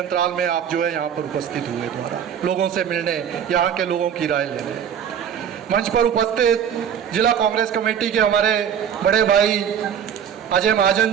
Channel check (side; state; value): left; quieter; 8.5 dB